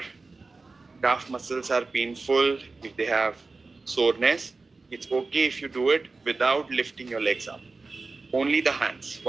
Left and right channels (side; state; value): left; quieter; 3.8 dB